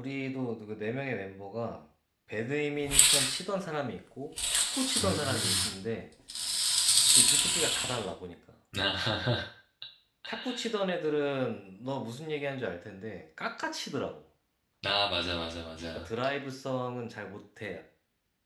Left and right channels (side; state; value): both; identical; correlation 1.00